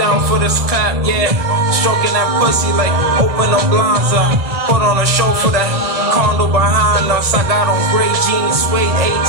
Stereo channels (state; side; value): late; left; 1.8 ms